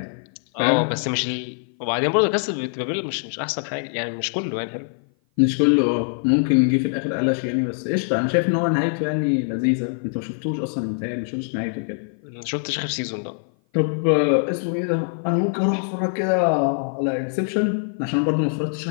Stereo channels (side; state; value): right; silent; 55 dB below the other